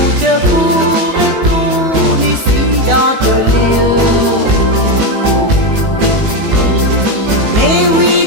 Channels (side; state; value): left; late; 19 ms